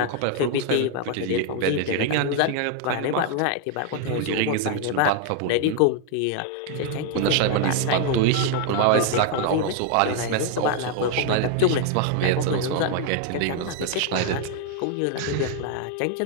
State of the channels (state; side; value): different; both; correlation 0.00